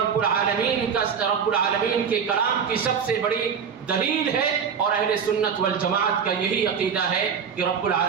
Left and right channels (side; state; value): left; quieter; 6.8 dB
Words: العالمین کے کلام کی سب سے بڑی دلیل ہے، اور اہل سنت والجماعت کا یہی عقیدہ ہے کہ رب